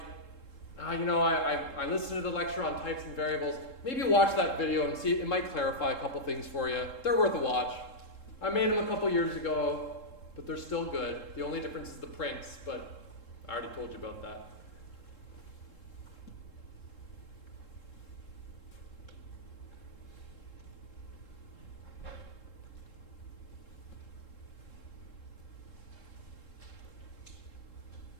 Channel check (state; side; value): late; right; 3.7 ms